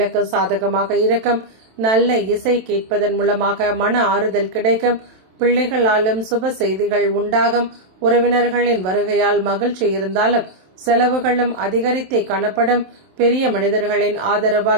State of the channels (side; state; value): left; late; 27 ms